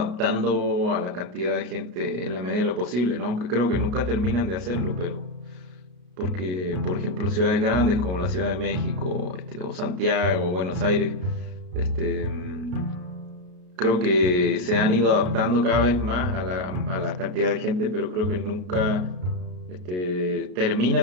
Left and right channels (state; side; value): late; left; 33 ms